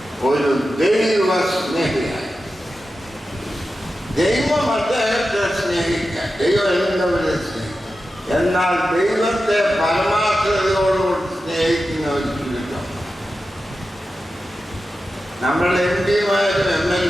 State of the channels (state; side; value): normal; both; correlation 0.92